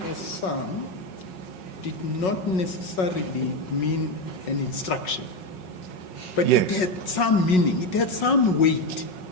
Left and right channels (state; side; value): late; right; 5.4 ms